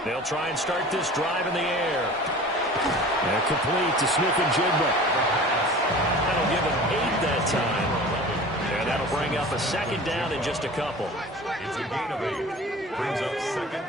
They'll try and start this drive in the air. And complete to Smith-Njigba. That'll give him 8 that time. And that'll bring up a 2nd down in just a couple. It's a gain of 8. Brings up 2nd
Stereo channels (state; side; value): normal; both; correlation 0.40